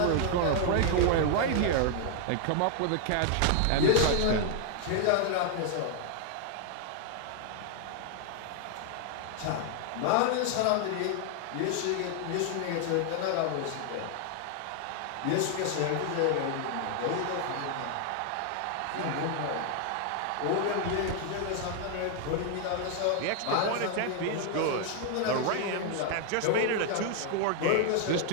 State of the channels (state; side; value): different; both; correlation 0.00